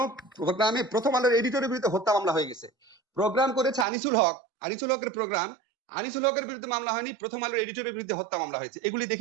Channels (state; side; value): drops out; left; at 3.9 s